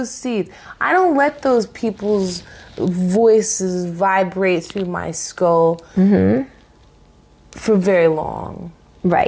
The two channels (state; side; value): identical; both; correlation 1.00